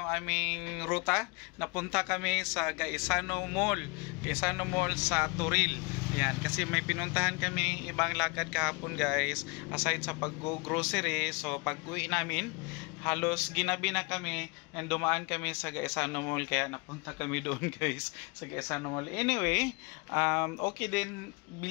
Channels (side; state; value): right; quieter; 29.5 dB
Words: aming ruta. Napunta kami sa Gaisano Mall sa Turil. Yan, kasi may pinuntahan kami ibang lakad kahapon guys, aside sa pag-grocery. So pag-uwi namin, halos ginabi na kami and dumaan kami sa Gaisano Mall, kaya napunta kami doon guys sa Gaisano Mall. Anyway, okay din